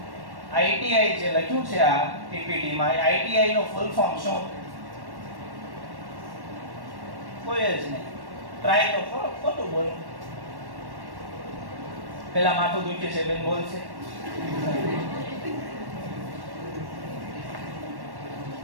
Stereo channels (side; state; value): left; late; 1.1 ms